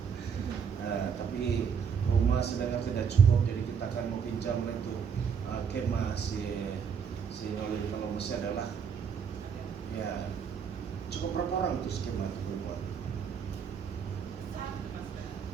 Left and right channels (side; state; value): left; quieter; 6.8 dB